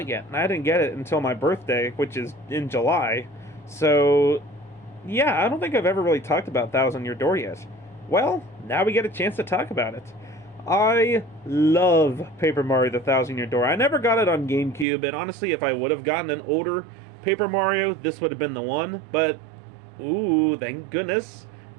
yet, and I didn't get it until my birthday, which is in July. So, yeah, I don't think I've ever really talked about Thousand-Year Door yet. Well, now we get a chance to talk about it. I love Paper Mario: The Thousand-Year Door. I never got it on GameCube, and honestly, if I would have gotten an older Paper Mario, this would have been the one, but, ooh, thank goodness,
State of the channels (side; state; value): left; drops out; at 14.9 s